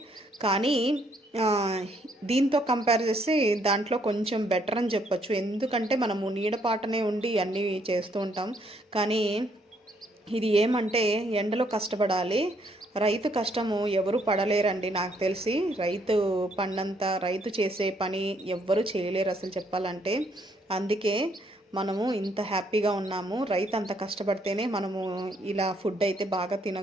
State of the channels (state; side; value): normal; both; correlation 0.70